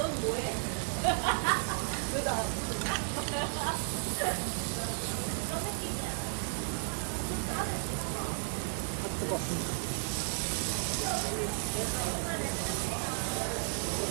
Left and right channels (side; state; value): left; silent; 55 dB below the other